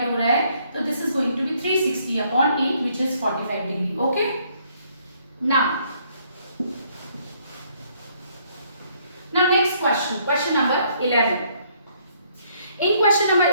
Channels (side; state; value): both; inverted; correlation -0.67